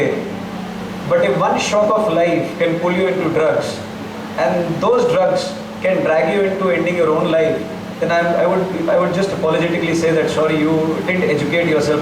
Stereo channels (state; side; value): identical; both; correlation 1.00